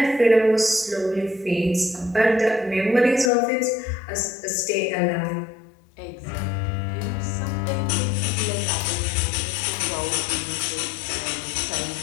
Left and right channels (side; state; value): right; drops out; at 3.3 s